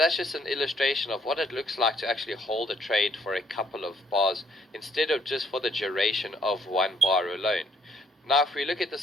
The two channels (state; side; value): normal; both; correlation 0.66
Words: just an illustration of what it looks like to actually hold a trade for a couple of bars instead of just for the duration of one bar alone. Now if we look at